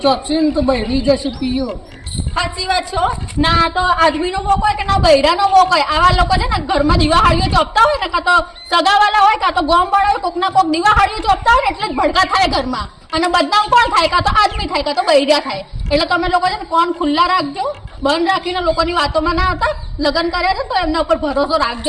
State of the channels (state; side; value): identical; both; correlation 1.00